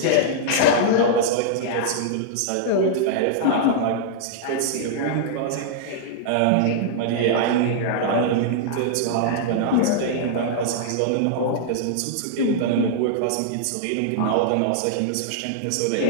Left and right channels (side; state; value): both; different; correlation -0.02